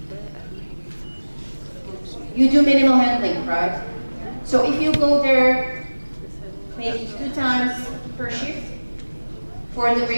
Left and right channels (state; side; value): inverted; both; correlation -1.00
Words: You do minimal handling, right? So if you go there maybe 2 times per shift for the